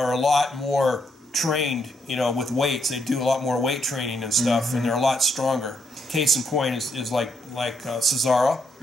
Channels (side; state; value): both; normal; correlation 0.76